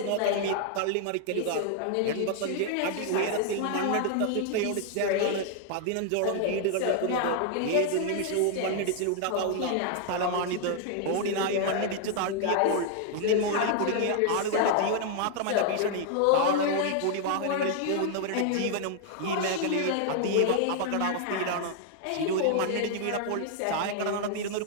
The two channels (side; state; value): both; different; correlation 0.00